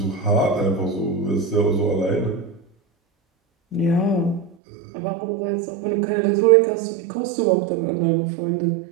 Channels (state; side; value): drops out; left; at 4.5 s